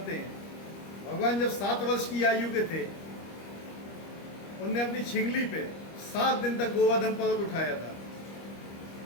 हैं। भगवान जब 7 वर्ष की आयु के थे, उनने अपनी छिंगली पे 7 दिन तक गोवर्धन पर्वत उठाया था।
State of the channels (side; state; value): right; late; 25 ms